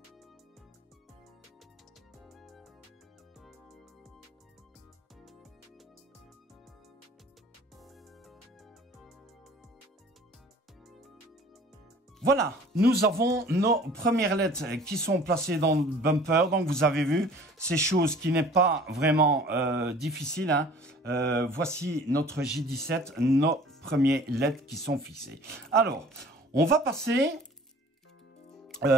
Voilà, nous avons nos premières LED qui sont placées dans le bumper. Donc, vous avez vu, c'est chose qui n'est pas vraiment difficile. Hein. Voici notre J17, nos premiers LED qui sont fixés. Alors, on va passer,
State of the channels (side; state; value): both; normal; correlation 0.49